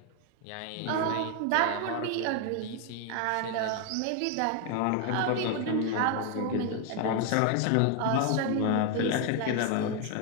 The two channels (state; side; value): different; both; correlation 0.00